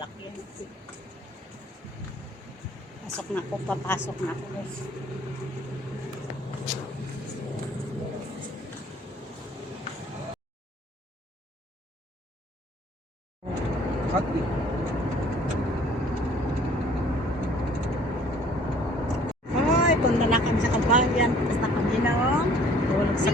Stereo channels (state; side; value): normal; both; correlation 0.55